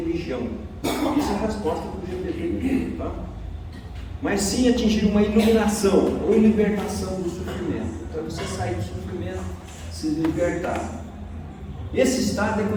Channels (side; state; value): both; identical; correlation 1.00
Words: Isso é a resposta que o GPT deu, tá? Mas sim atingir uma iluminação ou libertação do sofrimento. Então você sair do sofrimento, se libertar. Esse estado é